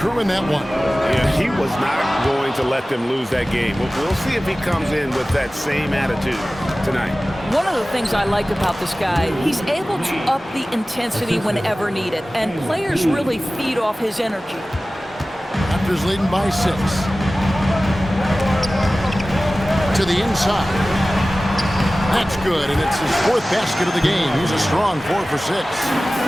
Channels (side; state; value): both; normal; correlation 0.97